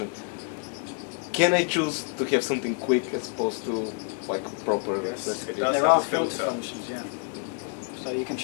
Can I choose to have something quick as opposed to like proper recipe? There are filter functions, yeah. So you can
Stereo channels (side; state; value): right; quieter; 39.7 dB